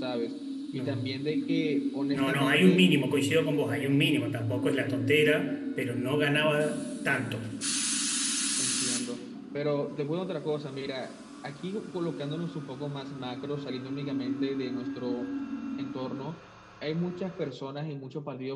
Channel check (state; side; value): identical; both; correlation 1.00